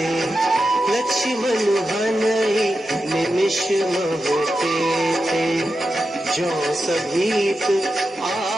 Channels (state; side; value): normal; both; correlation 0.89